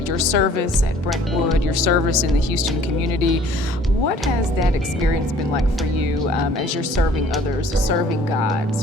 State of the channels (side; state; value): both; normal; correlation 0.54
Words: your service at Brentwood, your service in the Houston community. What has that experience been like for you as you're serving others, serving God,